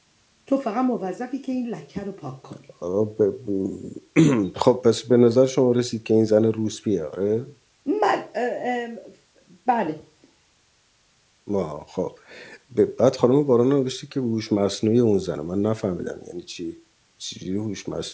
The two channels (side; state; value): both; identical; correlation 1.00